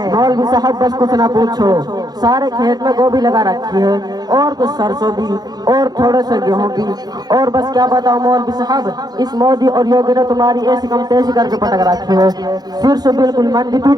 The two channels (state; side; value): late; left; 0.19 ms